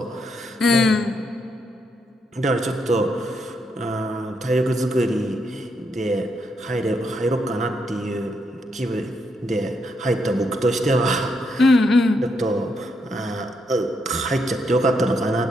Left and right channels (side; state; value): both; normal; correlation 0.78